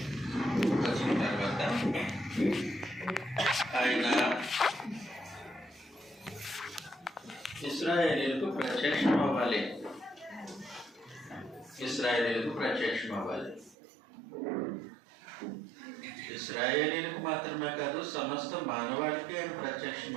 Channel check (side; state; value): left; drops out; at 13.8 s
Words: వచ్చిన తర్వాత ఆయన ఇశ్రాయేలీయులకు ప్రత్యక్షమవ్వాలి. ఇశ్రాయేలీయులకు మాత్రమే కాదు, సమస్త మానవాళికి ఆయన